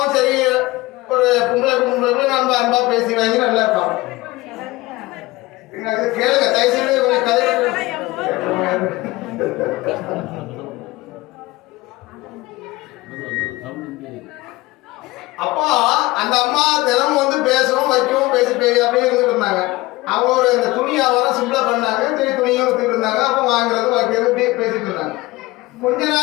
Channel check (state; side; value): quieter; right; 20.3 dB